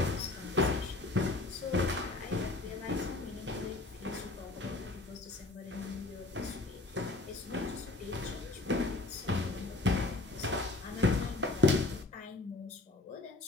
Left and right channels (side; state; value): right; quieter; 3.1 dB